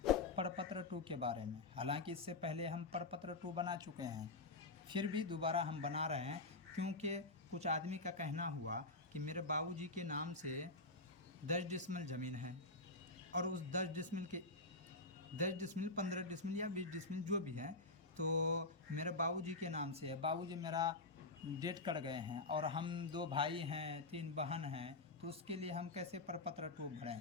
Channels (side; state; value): right; quieter; 3.2 dB